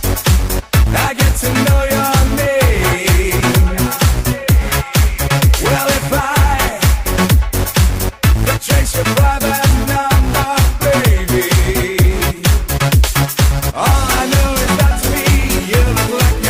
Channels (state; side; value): identical; both; correlation 1.00